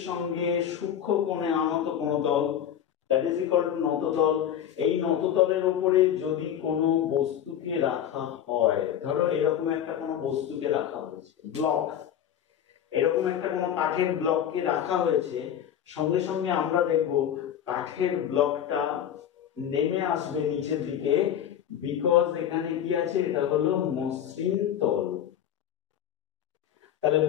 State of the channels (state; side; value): quieter; right; 9.9 dB